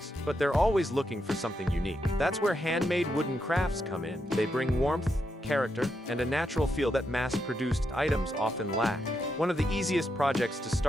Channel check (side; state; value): both; normal; correlation 0.83